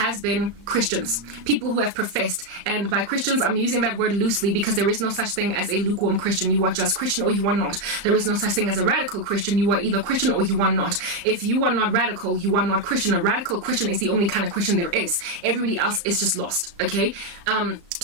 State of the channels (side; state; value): left; late; 35 ms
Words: been Christians, people who have professed, and by Christians I'm using that word loosely because there is no such thing as a lukewarm Christian. You are just Christian or you are not. There is no such thing as a radical Christian. You are either Christian or you are not. If you are not radical, you are not Christian. A radical Christian is the only kind of Christian there is. Everybody else is just lost, okay?